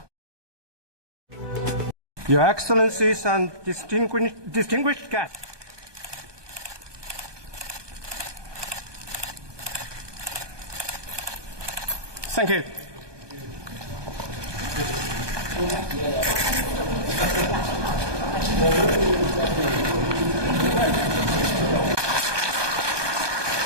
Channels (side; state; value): left; late; 1.2 ms